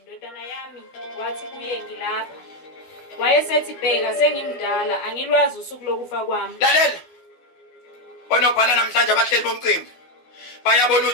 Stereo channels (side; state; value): right; late; 12 ms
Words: yami, wathi kuye ngilapha. Wayesethi bheka sengimdala angilwazi usuku lokufa kwami. Lalela. Onobhala namhlanje abahleli bomcimbi. Bayabona